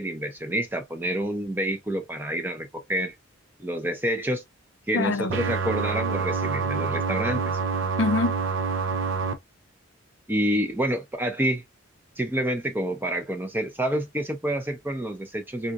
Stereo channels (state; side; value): normal; both; correlation 0.45